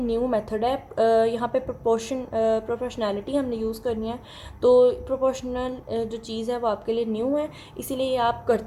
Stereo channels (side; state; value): both; identical; correlation 1.00